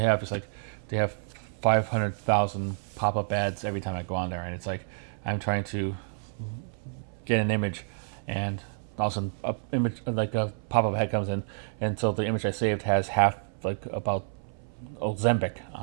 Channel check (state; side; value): silent; left; 59 dB below the other